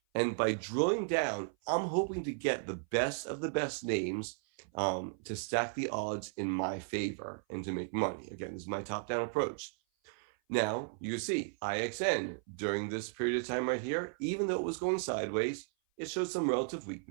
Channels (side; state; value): left; silent; 54 dB below the other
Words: And by drilling down, I'm hoping to get the best of the best names to stack the odds in my favor and to make money. Again, this is my top-down approach. Now, you see IXN during this period of time right here, even though it was going sideways, it showed some relative